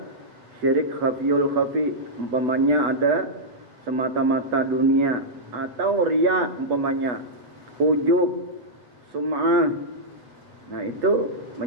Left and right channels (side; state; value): left; late; 8.1 ms